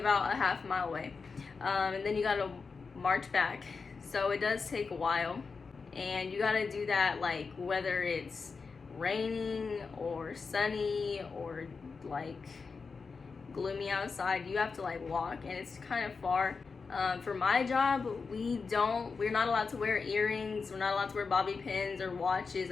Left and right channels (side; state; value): right; quieter; 4.8 dB